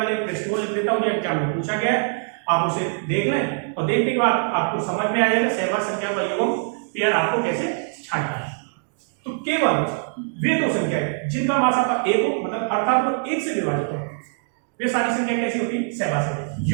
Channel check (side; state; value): left; silent; 63 dB below the other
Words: प्रश्न को लिख देता हूं, जो एग्जाम में पूछा गया है। आप उसे देख लें और देखने के बाद आपको समझ में आ जाएगा सहवाग संख्या का युग्म पेयर आपको कैसे छांटना है। तो केवल वे दो संख्या है जिनका मासापा 1 हो, मतलब अर्थात वो 1 से विभाजित हो, वे सारी संख्या कैसी होती है? सहवाग संख्या।